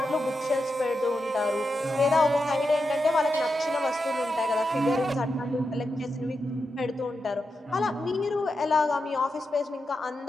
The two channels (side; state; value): both; normal; correlation 0.88